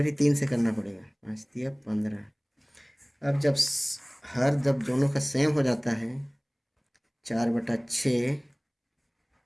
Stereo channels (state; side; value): identical; both; correlation 1.00